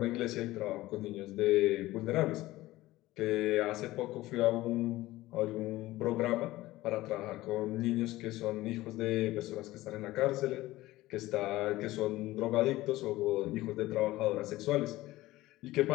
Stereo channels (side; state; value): right; quieter; 17.5 dB